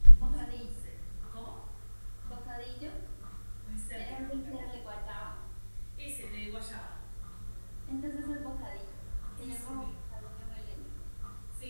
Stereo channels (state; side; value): inverted; both; correlation -1.00